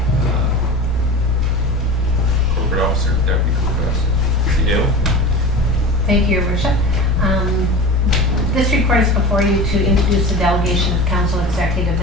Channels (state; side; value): normal; both; correlation 0.33